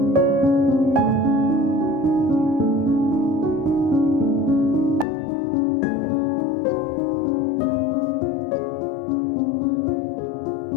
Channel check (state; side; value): drops out; right; at 5.1 s